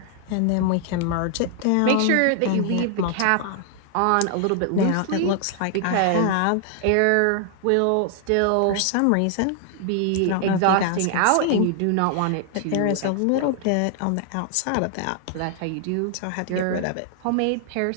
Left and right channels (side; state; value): both; different; correlation 0.00